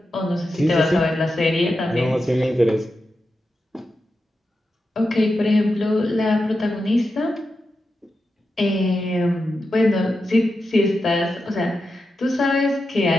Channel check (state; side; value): normal; both; correlation 0.89